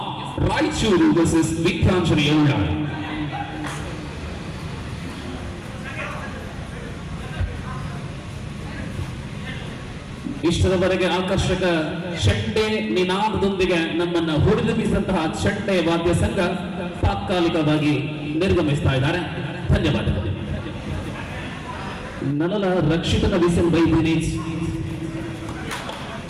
Raichuru versus Veeranjanaya Ullad. ಇಷ್ಟದವರೆಗೆ ಆಕರ್ಷಕ ಚಂಡೆ ನಿನಾದದೊಂದಿಗೆ ನಮ್ಮನ್ನ ಹುರಿದುಂಬಿಸಿದಂತಹ ಚಂಡೆ ವಾದ್ಯ ಸಂಘ ತಾತ್ಕಾಲಿಕವಾಗಿ ನಿರ್ಗಮಿಸ್ತಾ ಇದ್ದಾರೆ. ಧನ್ಯವಾದಗಳು. ನನ್ನಲ್ಲ ರಕ್ಷಿತನ ವಿಸಿಲ್ ಬೈ ದಿನೇಶ್.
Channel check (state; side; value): identical; both; correlation 1.00